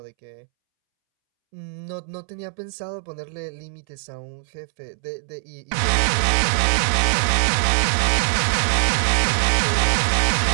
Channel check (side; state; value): left; silent; 64 dB below the other